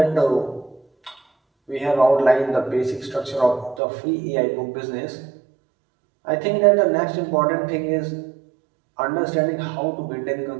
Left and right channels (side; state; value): left; drops out; at 3.8 s